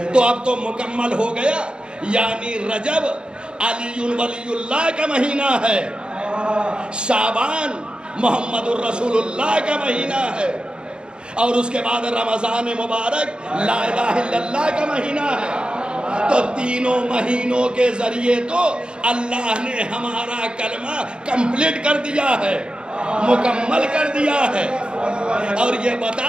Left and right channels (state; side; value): late; left; 0.052 ms